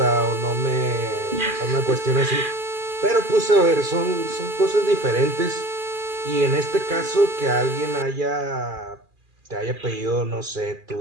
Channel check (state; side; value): late; left; 2.4 ms